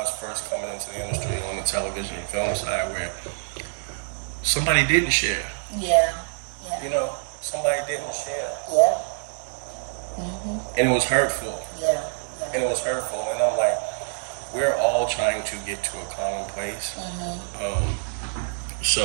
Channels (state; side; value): silent; left; 61 dB below the other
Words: first coming into the industry on the television and film side where somebody didn't share. Yeah. Somebody didn't share. Yeah. And it was hurtful. Yeah. And it was hurtful. And I'm like, we're all trying to get to a common place.